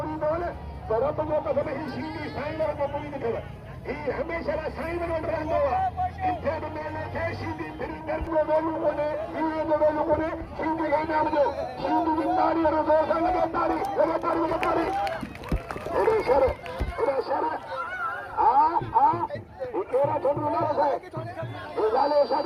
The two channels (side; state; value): both; identical; correlation 1.00